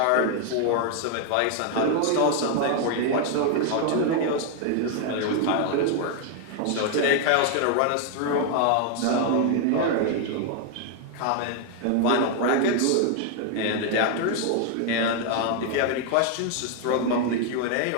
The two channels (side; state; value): both; different; correlation 0.00